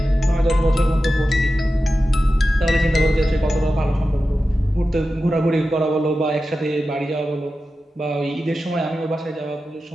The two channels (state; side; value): normal; both; correlation 0.93